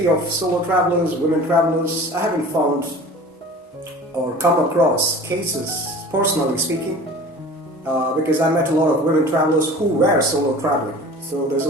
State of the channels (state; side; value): normal; both; correlation 0.42